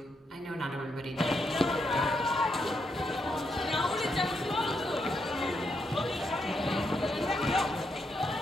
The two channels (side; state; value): both; normal; correlation 0.80